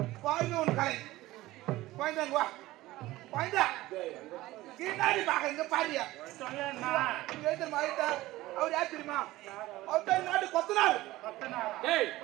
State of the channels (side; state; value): left; quieter; 17.5 dB